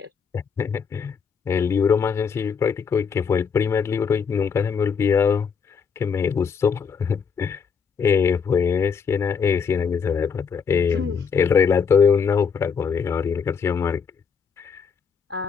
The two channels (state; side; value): quieter; right; 6.2 dB